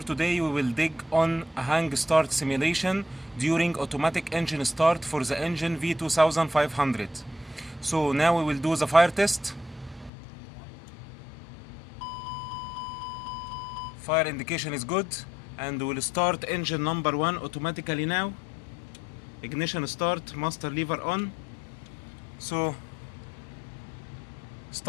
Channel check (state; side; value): drops out; right; at 10.1 s